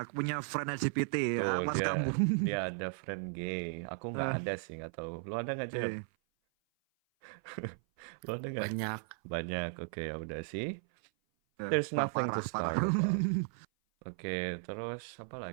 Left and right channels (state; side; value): silent; left; 54 dB below the other